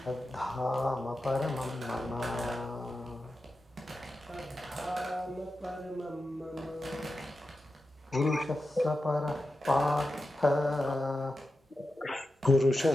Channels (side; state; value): both; normal; correlation 0.91